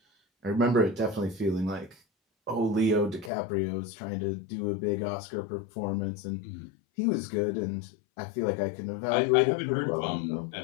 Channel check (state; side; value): drops out; right; at 3.3 s